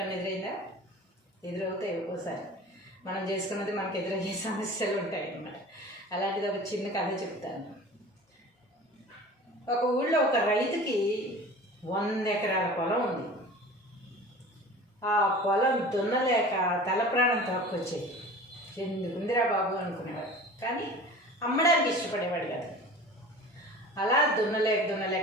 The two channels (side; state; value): both; normal; correlation 0.39